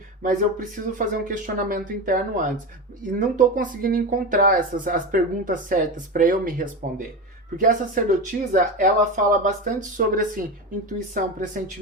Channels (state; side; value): normal; both; correlation 0.21